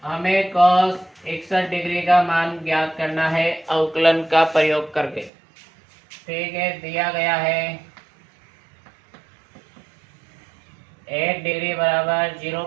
हमें cos 61 डिग्री का मान ज्ञात करना है अवकलन का प्रयोग करके। ठीक है, दिया गया है 1 डिग्री बराबर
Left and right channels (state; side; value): drops out; left; at 5.3 s